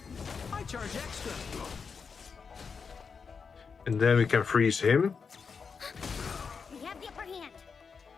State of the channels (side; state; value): right; quieter; 5.6 dB